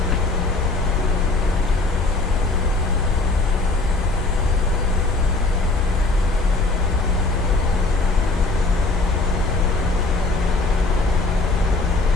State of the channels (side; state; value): right; quieter; 3.3 dB